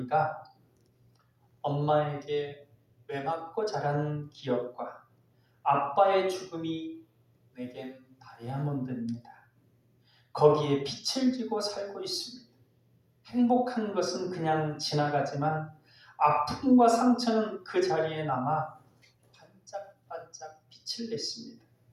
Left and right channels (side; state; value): both; identical; correlation 1.00